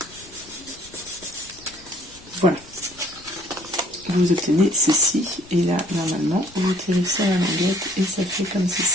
Voilà. Vous obtenez ceci. Et là, normalement, vous tirez ça à la languette et ça fait comme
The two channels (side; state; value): left; noise; rumble, 23 dB below the sound